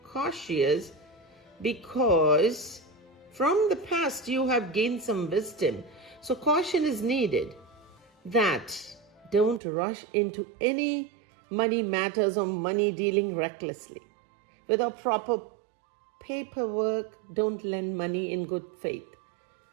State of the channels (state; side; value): drops out; left; at 9.6 s